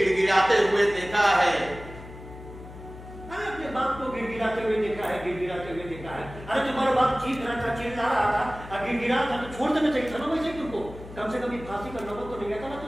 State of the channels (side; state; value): left; noise; hum, 15 dB below the sound